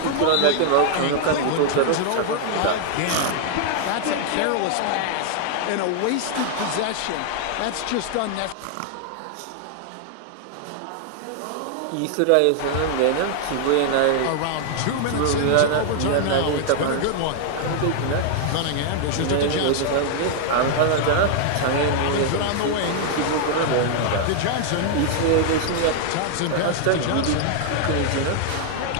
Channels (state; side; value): different; both; correlation 0.00